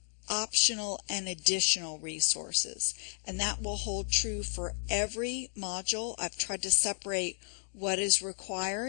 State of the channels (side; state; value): right; silent; digital silence